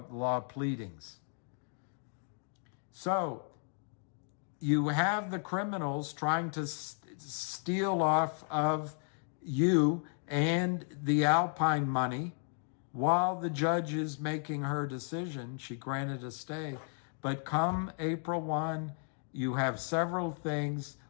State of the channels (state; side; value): silent; right; 55 dB below the other